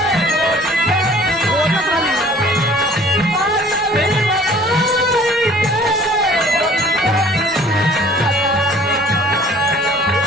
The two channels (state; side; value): normal; both; correlation 0.52